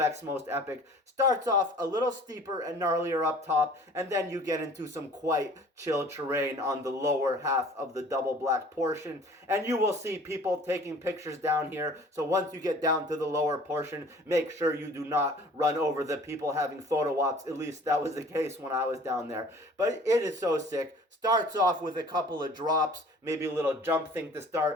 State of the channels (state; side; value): normal; both; correlation 0.49